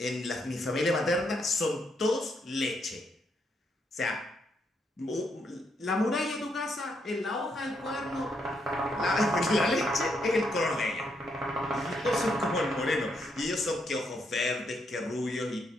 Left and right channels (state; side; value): normal; both; correlation 0.77